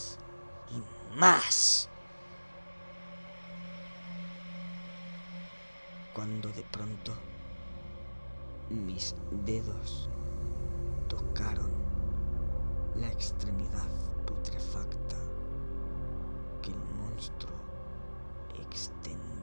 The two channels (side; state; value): both; inverted; correlation -1.00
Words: y más, cuando de pronto mis dedos tocaron la extremidad putrefacta que el monstruo